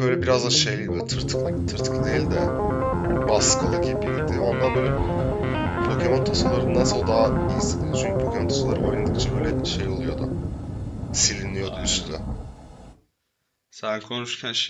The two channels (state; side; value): identical; both; correlation 1.00